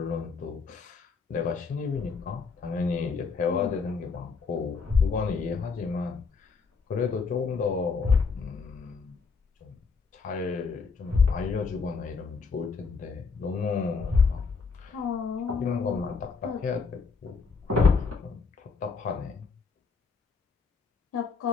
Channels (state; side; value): quieter; right; 4.9 dB